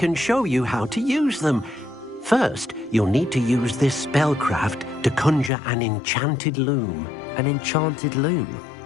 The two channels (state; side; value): drops out; right; at 5.5 s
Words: show you how to use them. First, you'll need to use this spellcraft to conjure an enchanted loom. An enchanted loom?